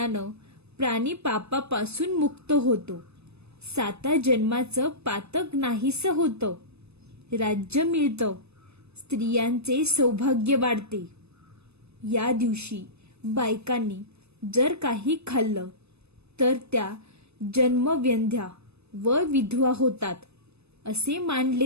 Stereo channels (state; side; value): late; left; 0.79 ms